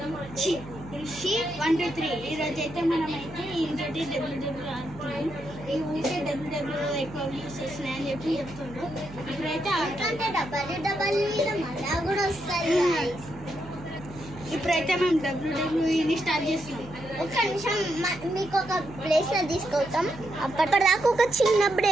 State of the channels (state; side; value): noise; right; hum, 16 dB below the sound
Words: ఋషి 1 2 3. ఈరోజు అయితే మనమైతే ఇంకోటి డబ్ల్యూడబ్ల్యూ ఆడుతున్నాం. ఈ ఊరికే డబ్ల్యూడబ్ల్యూ ఎక్కువ వ్యూస్ వస్తున్నాయి అని చెప్పి చెప్తుండ్రు. ఇప్పుడైతే ఇప్పుడైతే మేము డబ్ల్యూడబ్ల్యూని స్టార్ట్ చేస్తున్నాం. ఒక్క నిమిషం మీకు ఒక ప్లేస్లో తీసుకొస్తాం. అప్పటిదాకా ఒక చిన్న